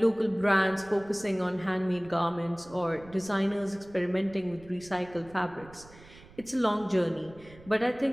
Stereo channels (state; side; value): noise; right; rumble, 22 dB below the sound